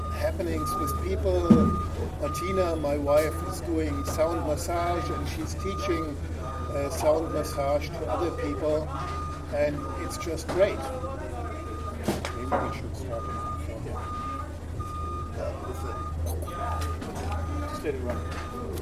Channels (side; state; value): both; identical; correlation 1.00